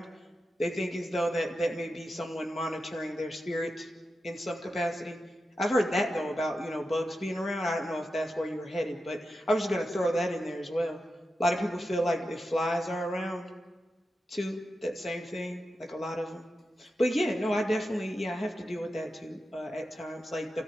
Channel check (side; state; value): both; normal; correlation 0.90